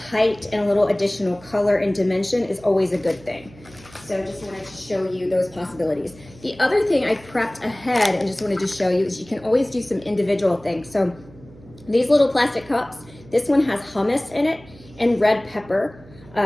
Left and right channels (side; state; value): right; noise; hum, 22 dB below the sound